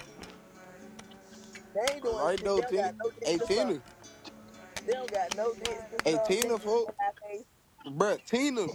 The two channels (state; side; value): identical; both; correlation 1.00